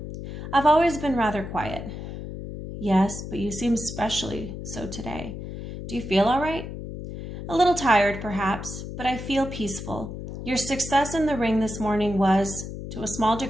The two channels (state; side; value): noise; left; hum, 9 dB below the sound